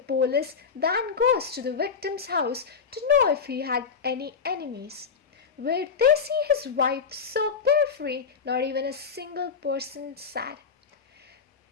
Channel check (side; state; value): right; quieter; 5.9 dB